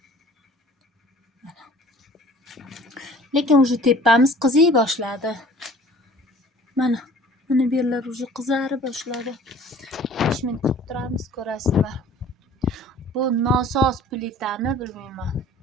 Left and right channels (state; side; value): normal; both; correlation 0.49